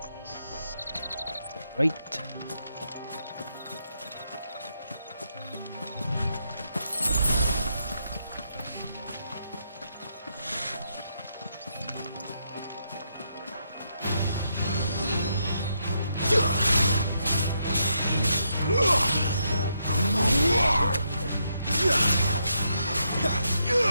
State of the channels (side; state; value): both; inverted; correlation -0.79